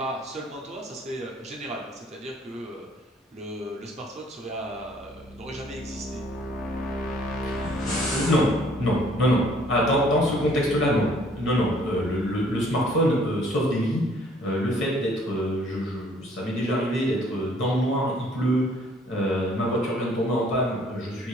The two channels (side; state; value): both; normal; correlation 0.60